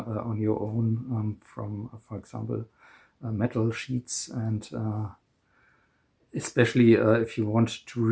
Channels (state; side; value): identical; both; correlation 1.00